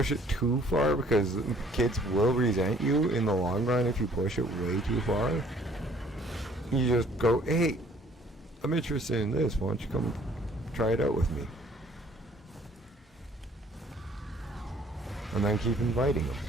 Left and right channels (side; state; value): both; normal; correlation 0.58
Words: it too far, because kids will resent you in the long run if you push it way too far. You just go, hey, I'm interested in this. Why don't you come try it out with me? And then keep inviting them.